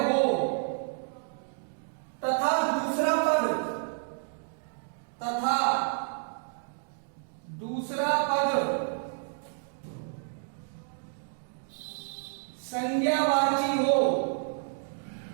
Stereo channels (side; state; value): left; silent; digital silence